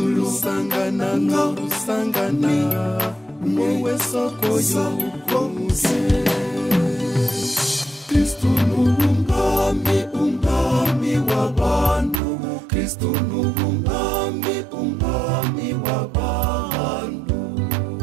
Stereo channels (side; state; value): left; drops out; at 12.2 s